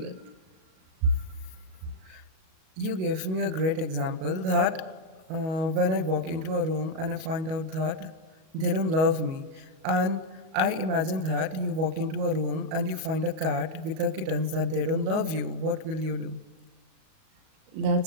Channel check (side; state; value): left; late; 38 ms